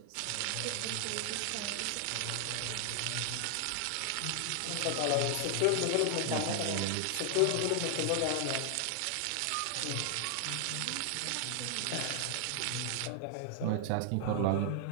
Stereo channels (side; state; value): both; different; correlation 0.00